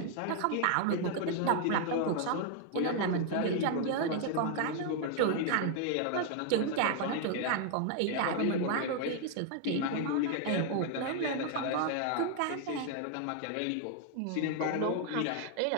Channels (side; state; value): both; different; correlation 0.00